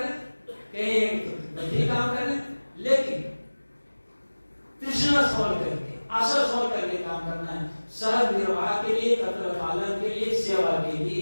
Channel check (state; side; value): inverted; both; correlation -1.00